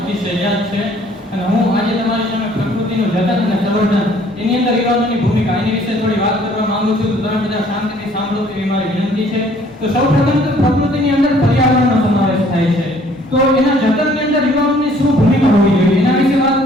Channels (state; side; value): normal; both; correlation 0.58